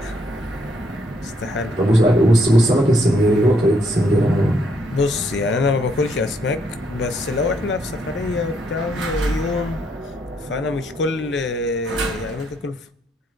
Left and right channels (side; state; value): both; normal; correlation 0.73